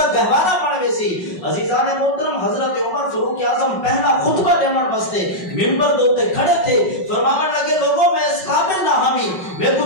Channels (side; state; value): right; late; 5.4 ms